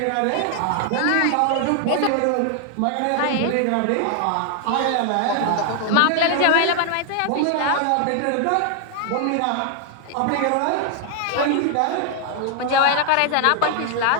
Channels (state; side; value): different; both; correlation 0.00